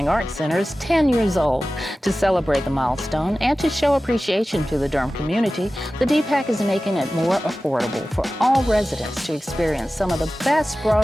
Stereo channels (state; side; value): normal; both; correlation 0.96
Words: Arts Center is 10 years old. To celebrate the milestone and to show appreciation to the Durham community, the DPAC is making it more affordable for all residents to experience some of the best